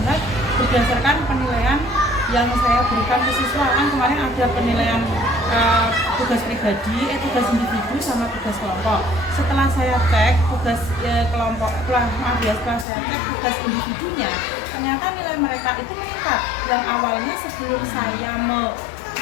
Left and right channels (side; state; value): right; drops out; at 12.9 s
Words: berdasarkan penilaian yang saya berikan ke siswa. Kan kemarin ada penilaian tugas pribadi, tugas individu sama tugas kelompok. Setelah saya cek tugas kelompok, setelah saya cek tugas individunya, ternyata nilai mereka itu meningkat. Yang awalnya sebelum saya